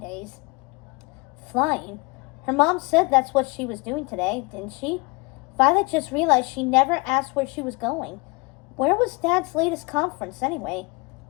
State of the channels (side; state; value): right; quieter; 27.1 dB